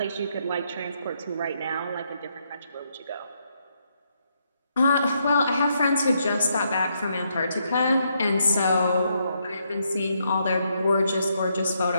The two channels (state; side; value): inverted; both; correlation -0.77